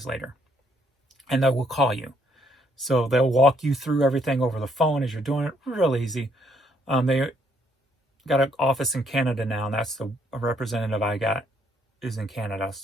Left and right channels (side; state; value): both; normal; correlation 0.69